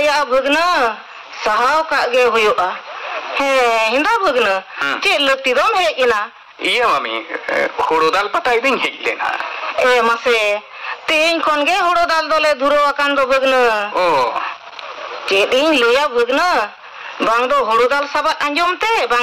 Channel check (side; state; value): both; identical; correlation 1.00